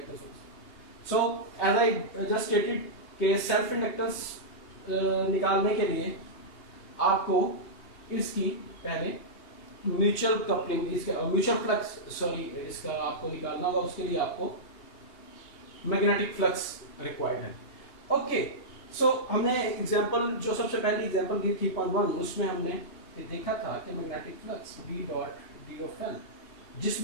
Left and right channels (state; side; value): late; right; 2.8 ms